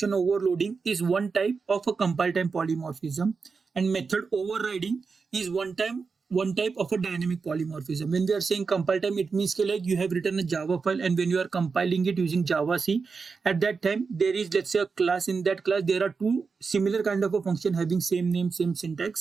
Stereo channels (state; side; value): quieter; left; 4.9 dB